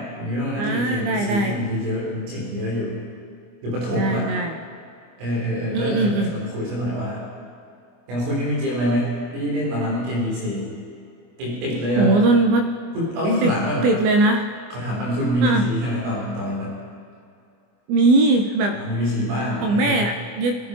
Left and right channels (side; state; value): left; late; 25 ms